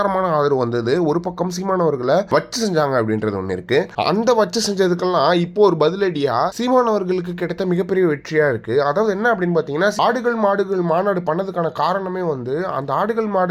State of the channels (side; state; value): both; identical; correlation 1.00